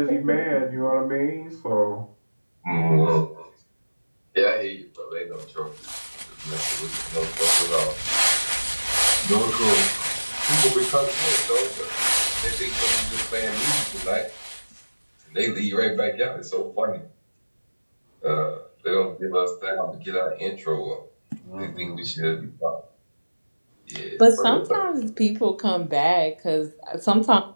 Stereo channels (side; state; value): both; inverted; correlation -1.00